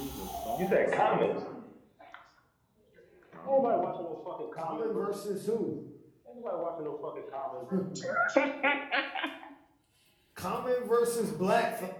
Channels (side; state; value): both; identical; correlation 1.00